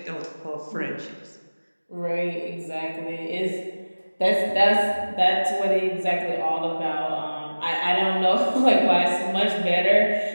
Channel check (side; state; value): both; inverted; correlation -1.00